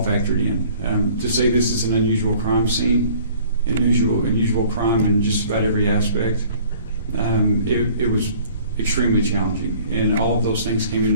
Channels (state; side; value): inverted; both; correlation -0.53